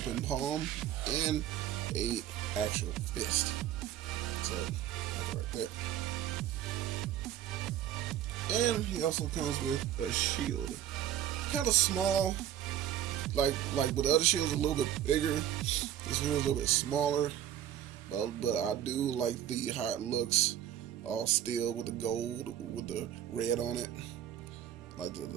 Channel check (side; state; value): left; quieter; 11.1 dB